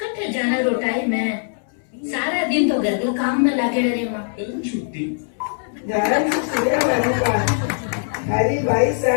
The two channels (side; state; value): right; silent; 65 dB below the other